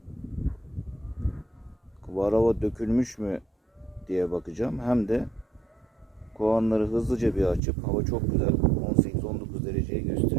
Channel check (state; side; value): drops out; left; at 7.6 s